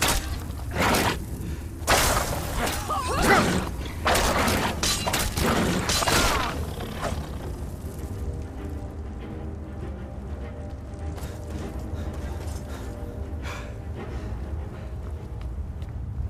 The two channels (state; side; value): identical; both; correlation 1.00